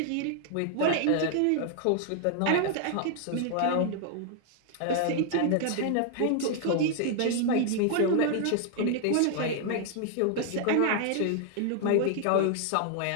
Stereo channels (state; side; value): different; both; correlation 0.00